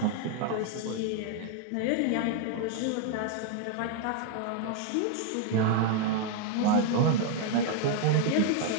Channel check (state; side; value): different; both; correlation 0.00